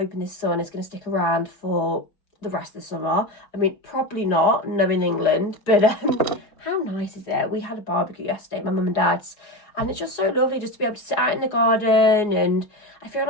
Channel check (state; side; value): late; right; 4.8 ms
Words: this sun is going to stick around for the rest of the summer. I mean, probably not, knowing England. But how nice is it? We had a barbecue yesterday, my mum and dad's. And it's just so lovely just to be able to sit out in the garden. And I feel